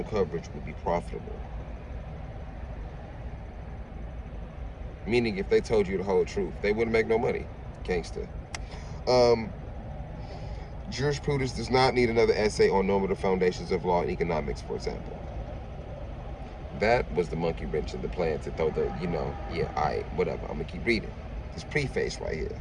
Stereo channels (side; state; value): both; identical; correlation 1.00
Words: coverage would be profitable. Meaning, if they told you the whole truth, they wouldn't make no money. Gangster. Jurisprudence does not need another essay on normative foundations of law and economics, for example. That was the monkey wrench in the plan to throw the, whatever. I'm going to keep reading. This preface right here,